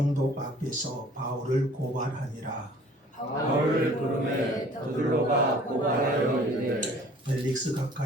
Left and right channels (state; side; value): normal; both; correlation 0.52